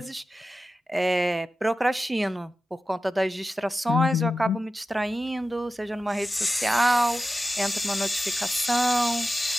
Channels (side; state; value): both; normal; correlation 0.93